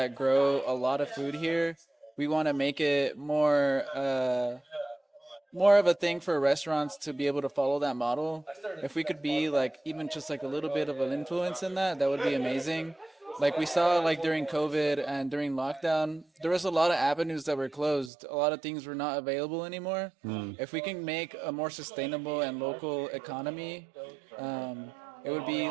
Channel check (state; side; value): drops out; left; at 18.1 s